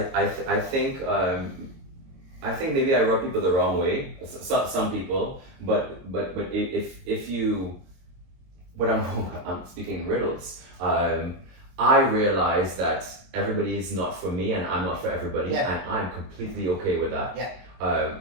think maybe I rub people the wrong way, some people, but if you, I'm speaking riddles. I realize that everybody is not for me, and I'm not for everybody, and I'm completely okay with that. Yeah.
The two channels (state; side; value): late; left; 22 ms